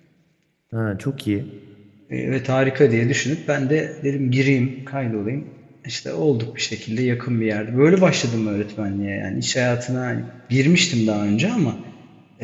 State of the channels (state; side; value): identical; both; correlation 1.00